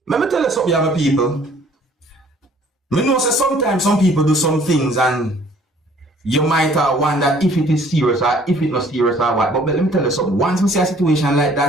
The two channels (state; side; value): normal; both; correlation 0.57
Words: let me tell you something, young people. I know that sometimes some people do some things and you might wonder if it is serious or if it's not serious or what. But let me tell you something. Once I see a situation like